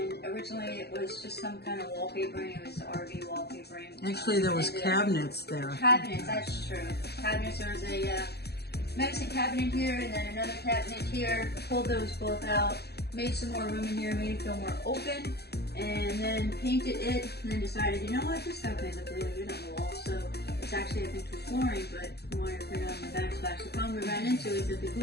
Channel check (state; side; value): late; right; 0.47 ms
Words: originally it was just some kind of wallpapering. It was RV wallpapering. Actually, there was cabinets there. Cabinets, that's true. Cabinets. There was a medicine cabinet here, and then another cabinet here. Pulled those both out, made some more room in here, made it feel more open, and then painted it. And then decided, you know what, this stuff may look really good on the wall. So it's actually, I think, for flooring, but we wanted to put it on the backsplash. The problem we ran into is that the